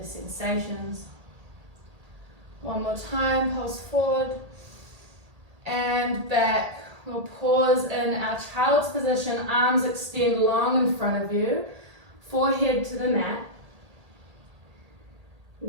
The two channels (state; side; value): late; left; 1.8 ms